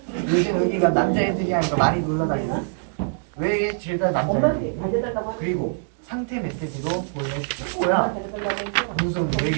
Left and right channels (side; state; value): left; silent; digital silence